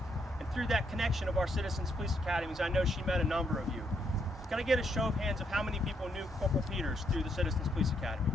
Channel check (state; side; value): normal; both; correlation 0.75